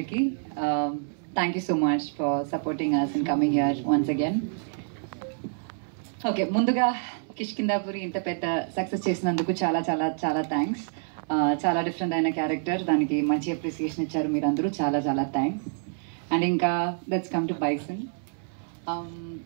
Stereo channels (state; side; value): silent; left; 60 dB below the other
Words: thank you so much for supporting us and coming here once again. Okay, ముందుగా కిష్కిందాపురి ఇంత పెద్ద సక్సెస్ చేసినందుకు చాలా చాలా చాలా థ్యాంక్స్. చాలా డిఫరెంట్ అయిన క్యారెక్టర్, దానికి మంచి అప్రిసియేషన్ ఇచ్చారు మీరందరూ, చాలా చాలా థ్యాంక్స్. అండ్ ఇంకా let's come to bison.